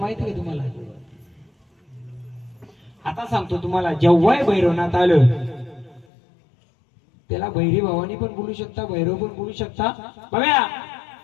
का तुम्हाला? आता सांगतो तुम्हाला, जेव्हाही भैरवनाथ आलं त्याला भैरी भावानी पण बोलू शकता, भैरव पण बोलू शकता. बघा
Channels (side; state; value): right; drops out; at 6.1 s